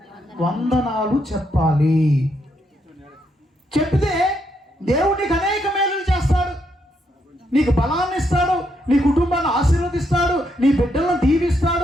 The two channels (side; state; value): both; normal; correlation 0.77